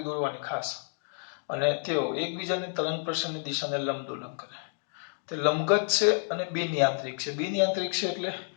દોરવાની ખાસ, અને તેઓ એકબીજાની તરંગ પ્રસરણની દિશાને લંબદોલન કરે. તે લંબગત છે અને બિનયાંત્રિક છે. બિનયાંત્રિક છે એટલે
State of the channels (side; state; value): right; silent; digital silence